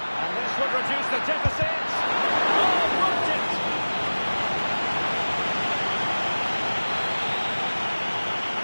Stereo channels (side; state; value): both; inverted; correlation -1.00